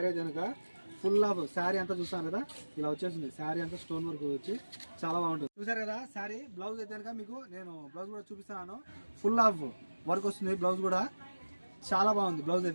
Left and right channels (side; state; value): both; inverted; correlation -1.00